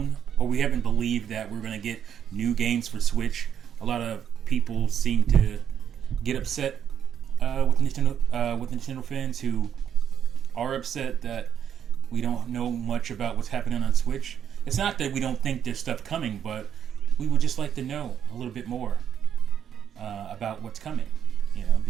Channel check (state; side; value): quieter; left; 8.8 dB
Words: or we haven't believed that we're going to get new games for Switch. A lot of people seem to get upset with Nintendo fans who are upset that we don't know much about what's happening on Switch. It's not that we don't think there's stuff coming, but we would just like to know a little bit more about what's coming,